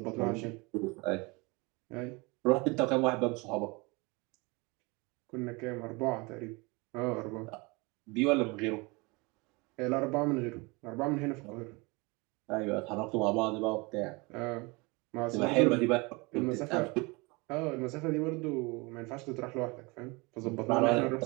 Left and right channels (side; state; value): left; quieter; 26.6 dB